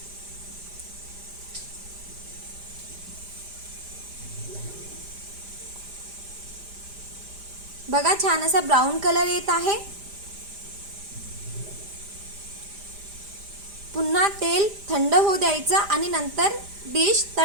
बघा, छान असा ब्राऊन कलर येत आहे. पुन्हा तेल थंड होऊ द्यायचं आणि नंतर डिश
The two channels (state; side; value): late; left; 5.0 ms